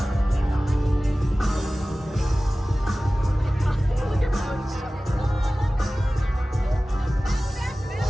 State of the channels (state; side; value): normal; both; correlation 0.97